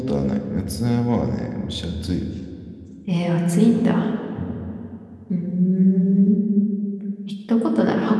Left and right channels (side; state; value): both; identical; correlation 1.00